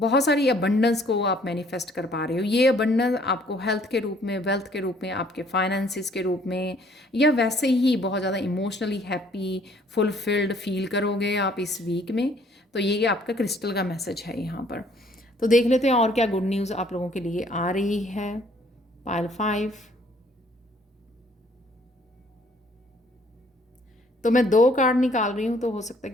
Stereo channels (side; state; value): both; normal; correlation 0.61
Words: सारी अबंडेंस को आप मैनिफेस्ट कर पा रहे हो। ये अबंडेंस आपको हेल्थ के रूप में, वेल्थ के रूप में, आपके फाइनेंसिस के रूप में, या वैसे ही बहुत ज़्यादा इमोशनली हैप्पी, फुलफिल्ड फील करोगे आप इस वीक में। तो ये आपका क्रिस्टल का मैसेज है यहाँ पर। तो देख लेते हैं और क्या गुड न्यूज़ आप लोगों के लिए आ रही है। पाइल 5। तो मैं 2 कार्ड निकाल रही हूँ, तो हो सकता है